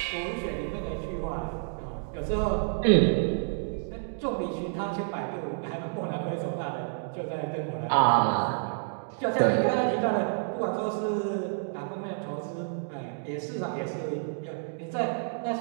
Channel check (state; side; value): silent; left; digital silence